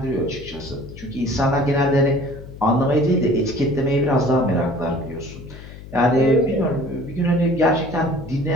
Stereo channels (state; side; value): noise; left; hum, 15 dB below the sound